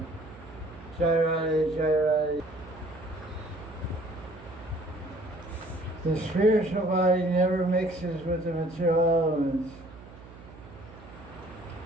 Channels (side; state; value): right; noise; hum, 18 dB below the sound